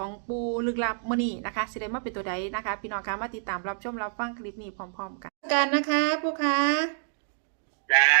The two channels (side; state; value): left; silent; digital silence